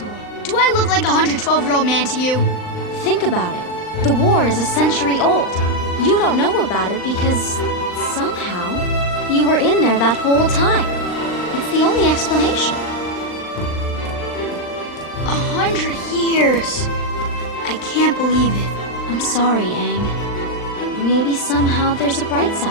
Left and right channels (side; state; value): right; late; 39 ms